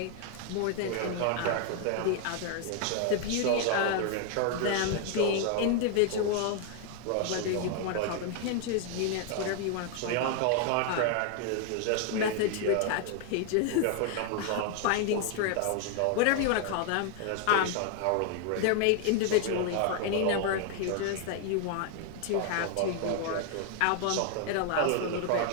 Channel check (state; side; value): different; both; correlation 0.00